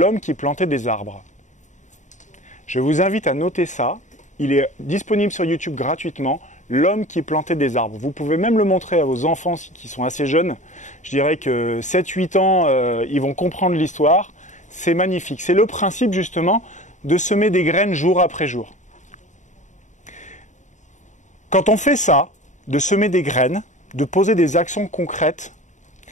qui plantait des arbres. Je vous invite à noter ça. Il est disponible sur YouTube gratuitement. L'homme qui plantait des arbres. Vous pouvez même le montrer à vos enfants qui sont assez jeunes. Je dirais que 7-8 ans, ils vont comprendre l'histoire. C'est magnifique. C'est le principe justement de semer des graines jour après jour. Quand on fait ça, de semer des graines, de poser des actions concrètes,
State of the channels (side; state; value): right; late; 0.35 ms